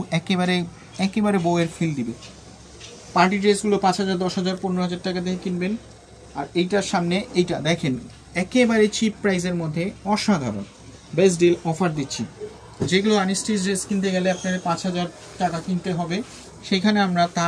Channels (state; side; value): identical; both; correlation 1.00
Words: একেবারে বউয়ের ফিল দিবে। পার্টি ড্রেসগুলো 5,000, 10,000, 15,000 টাকা দিয়ে কিনবেন। আর এইটার সামনে এইটা দেখেন একেবারে চিপ প্রাইসের মধ্যে অসাধারণ বেস্ট ডিল অফার দিচ্ছি। যেগুলো আনস্টিচ ড্রেস কিনতে গেলে আপনার 5,000 টাকা কিনতে হবে, সেখানে আমরা